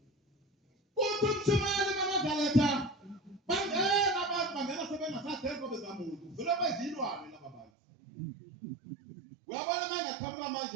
uyabona manje qhamuka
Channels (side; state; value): left; drops out; at 7.7 s